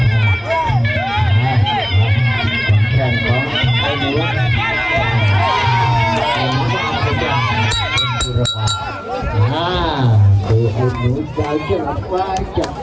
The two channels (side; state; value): both; identical; correlation 1.00